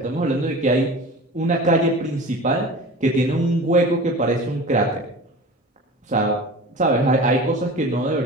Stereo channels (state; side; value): normal; both; correlation 0.36